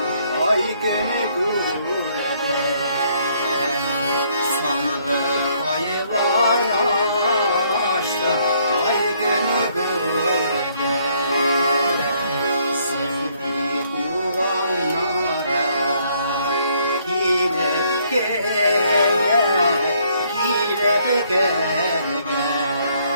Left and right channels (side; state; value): both; inverted; correlation -0.67